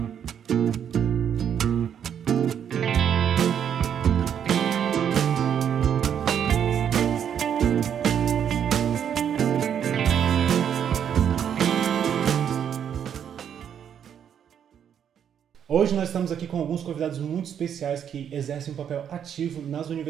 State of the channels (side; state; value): left; quieter; 8.7 dB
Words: Hoje nós estamos aqui com alguns convidados muito especiais que exercem um papel ativo nas